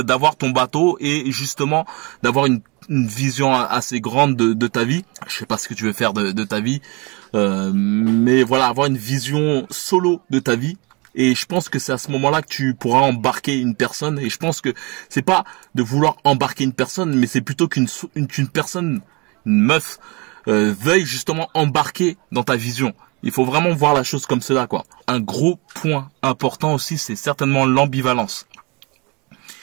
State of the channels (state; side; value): quieter; left; 28.6 dB